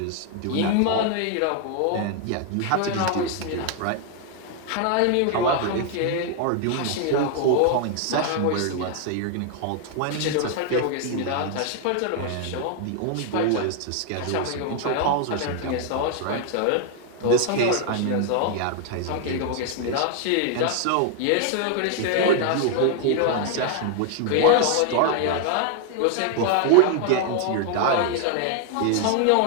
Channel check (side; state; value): both; different; correlation 0.00